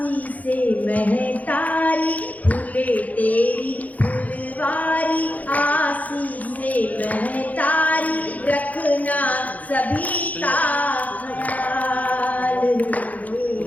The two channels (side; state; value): right; late; 0.076 ms